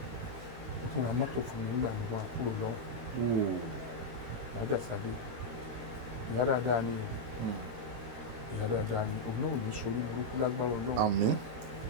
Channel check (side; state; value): left; late; 18 ms